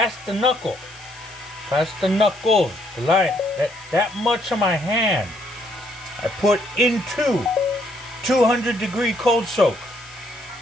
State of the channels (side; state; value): left; noise; hiss, 22 dB below the sound